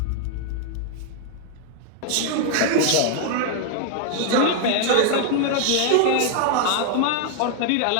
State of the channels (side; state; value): both; different; correlation 0.00